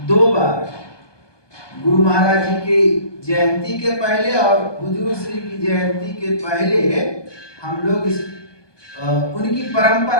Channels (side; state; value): right; late; 1.2 ms